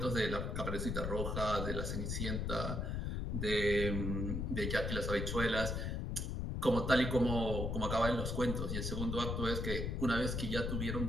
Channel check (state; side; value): noise; left; rumble, 1 dB below the sound